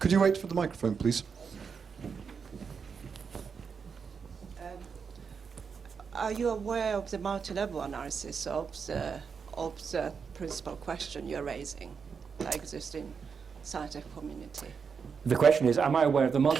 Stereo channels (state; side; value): quieter; left; 6.0 dB